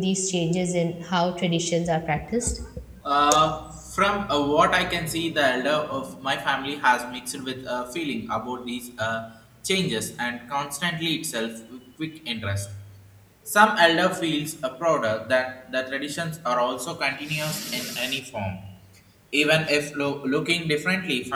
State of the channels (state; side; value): identical; both; correlation 1.00